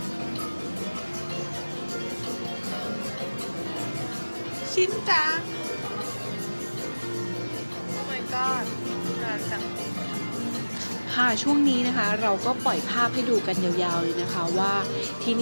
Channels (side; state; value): both; inverted; correlation -1.00